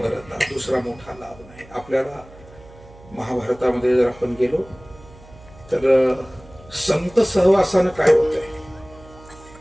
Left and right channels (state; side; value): noise; right; hum, 22 dB below the sound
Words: दुसरा मोठा लाभ नाही. आपल्याला महाभारतामध्ये जर आपण गेलो तर संत सहवासानं काय होतंय.